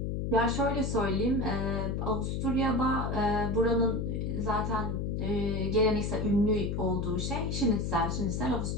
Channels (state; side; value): noise; left; hum, 1 dB below the sound